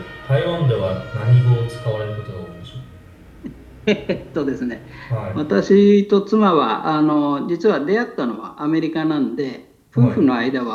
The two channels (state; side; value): identical; both; correlation 1.00